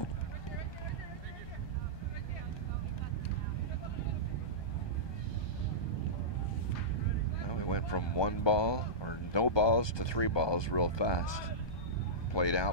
Went from 1 ball or no balls to 3 balls real fast. Played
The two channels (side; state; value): right; late; 1.2 ms